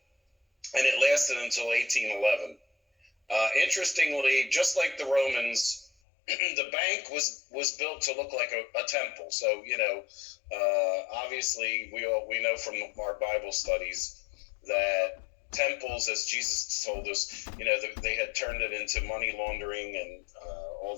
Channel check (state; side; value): drops out; right; at 5.9 s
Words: and it lasted until 1811. Interestingly, just like the Romans, the bank was built to look like a temple. So, obviously we know from our Bible studies that temples, as Jesus told us, they had turned it into money laundering and all